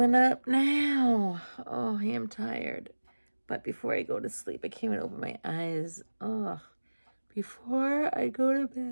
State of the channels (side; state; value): both; inverted; correlation -1.00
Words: up now? Oh, I am tired. But before I go to sleep, I can't even open my eyes. Oh, before I go to